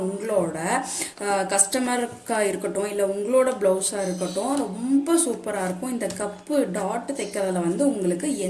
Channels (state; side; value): identical; both; correlation 1.00